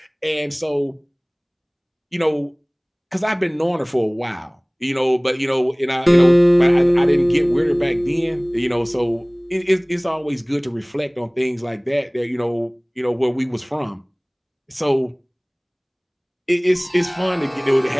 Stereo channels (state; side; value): identical; both; correlation 1.00